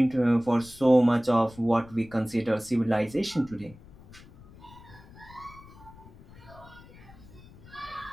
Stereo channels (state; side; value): noise; left; rumble, 21 dB below the sound